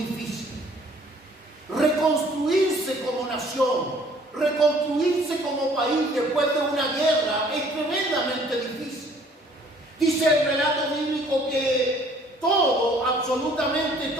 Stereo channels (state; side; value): normal; both; correlation 0.58